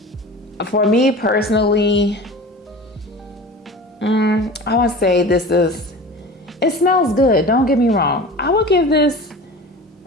For me personally, I would say it smells good. Don't get me wrong. I would give this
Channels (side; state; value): both; normal; correlation 0.36